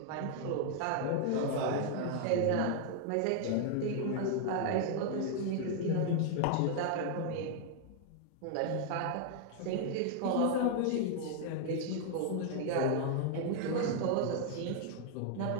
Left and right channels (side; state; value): both; different; correlation 0.00